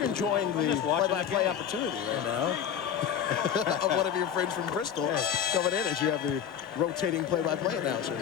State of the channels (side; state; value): right; quieter; 8.7 dB